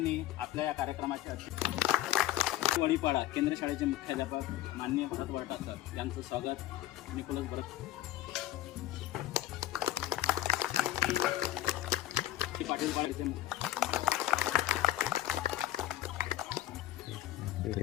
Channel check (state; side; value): quieter; right; 14.0 dB